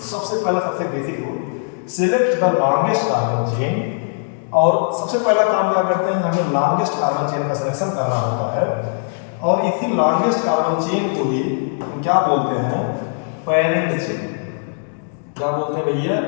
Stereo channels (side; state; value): right; silent; digital silence